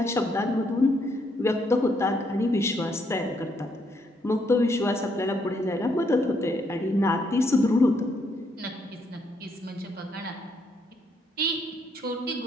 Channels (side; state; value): both; normal; correlation 0.73